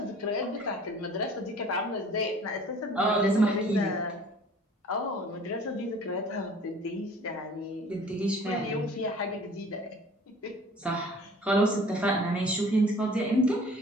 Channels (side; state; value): both; normal; correlation 0.49